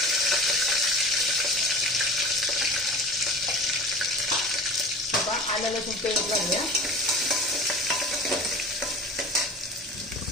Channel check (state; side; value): normal; both; correlation 0.37